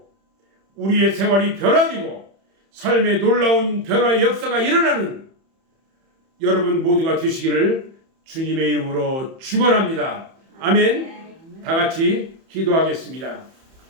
우리의 생활이 변화되고 삶의 놀라운 변화의 역사가 일어나는 여러분 모두가 되시기를 주님의 이름으로 축원합니다. 아멘. 다 같이 기도하겠습니다.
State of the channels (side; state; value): left; late; 31 ms